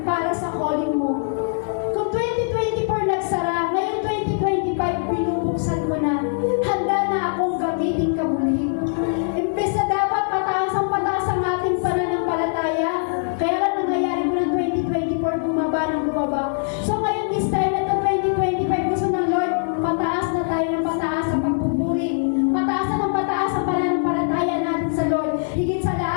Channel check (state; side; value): silent; right; digital silence